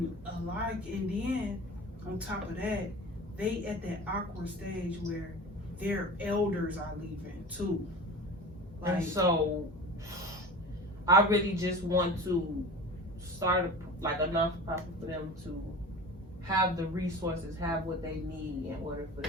then on top of that, they at that awkward stage where their elders are leaving too. Like, and so I really just want to start a non-profit for them to have the resources, have what they need in order for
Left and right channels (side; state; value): both; normal; correlation 0.35